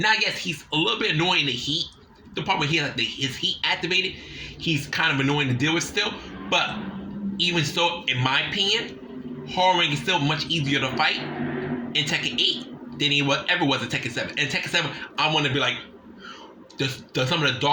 yes, he's a little bit annoying in the heat. The problem he has his heat activated, he's kind of annoying to deal with still. But even so, in my opinion, Horror is still much easier to fight in Tekken 8 than he ever was in Tekken 7. In Tekken 7, I want to be like, some of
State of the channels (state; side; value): identical; both; correlation 1.00